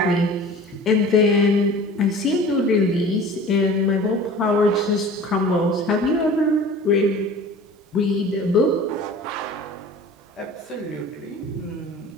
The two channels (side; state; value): both; normal; correlation 0.42